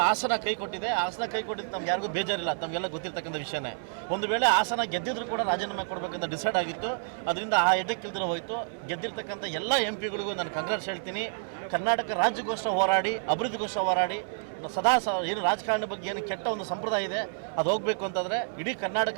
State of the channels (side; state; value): left; silent; digital silence